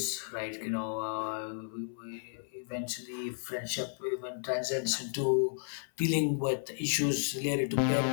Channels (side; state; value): right; silent; 56 dB below the other